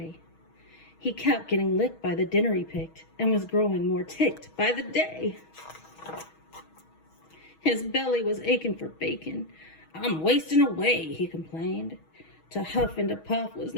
He kept getting licked by the dinner he picked and was growing more ticked by the day. His belly was aching for bacon. "I'm wasting away," he complained. To huff and to puff was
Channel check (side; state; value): right; late; 6.3 ms